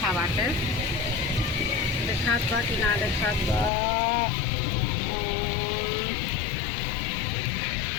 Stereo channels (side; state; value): right; drops out; at 3.7 s